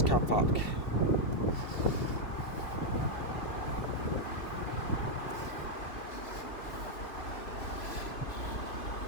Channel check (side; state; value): right; late; 2.9 ms